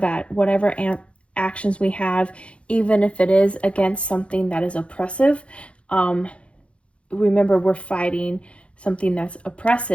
whatever actions we have, even if it is against something that is oppressive, remember we're fighting something that's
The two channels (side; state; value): right; late; 0.060 ms